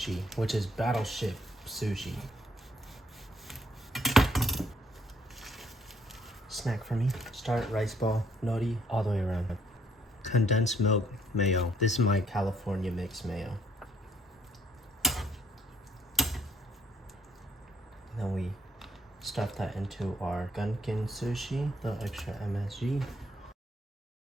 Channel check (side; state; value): both; normal; correlation 0.68